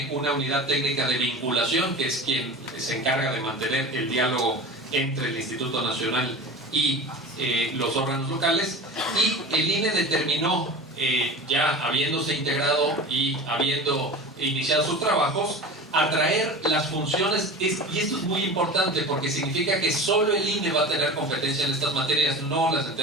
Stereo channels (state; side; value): normal; both; correlation 0.33